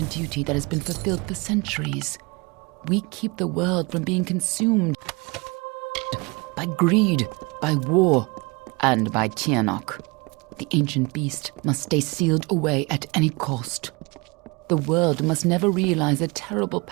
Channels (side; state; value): left; quieter; 27.2 dB